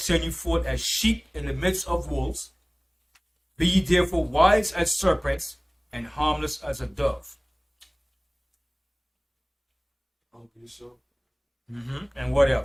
you forth as sheep in the midst of wolves. Be ye therefore wise as serpents and harmless as a dove. And what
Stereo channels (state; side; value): identical; both; correlation 1.00